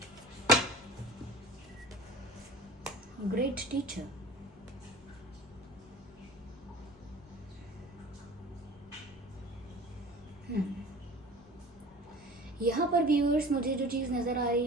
Great teacher. यहाँ पर व्यूअर्स मुझे जो चीज़ नज़र आ रही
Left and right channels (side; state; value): both; normal; correlation 0.41